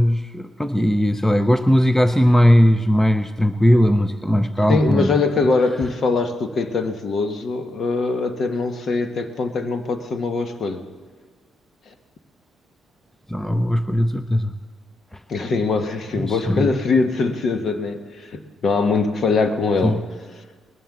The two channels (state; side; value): normal; both; correlation 0.87